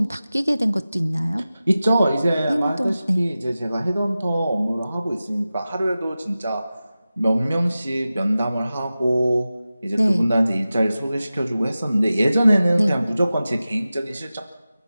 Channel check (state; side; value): inverted; both; correlation -0.95